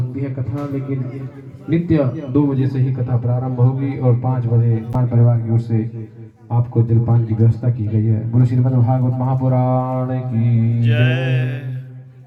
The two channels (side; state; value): both; identical; correlation 1.00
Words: है कथा, लेकिन नित्य 2 बजे से ही कथा प्रारंभ होगी और 5 बजे पान परिवार की ओर से आपको जलपान की व्यवस्था की गई है। गुरु श्रीमद् भागवत महापुराण की जय।